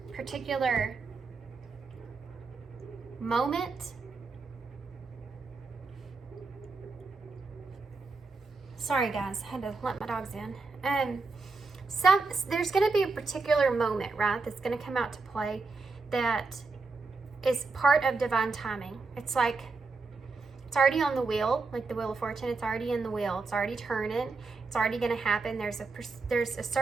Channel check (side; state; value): left; quieter; 4.0 dB